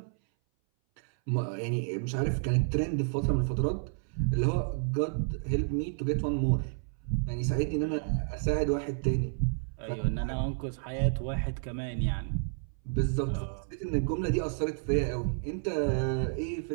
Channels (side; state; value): left; silent; 57 dB below the other